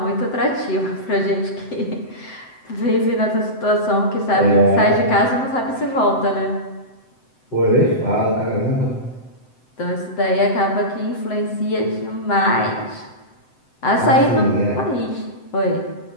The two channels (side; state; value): right; late; 7.8 ms